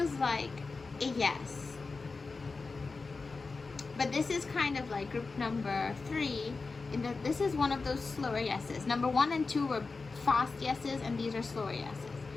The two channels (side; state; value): right; quieter; 4.1 dB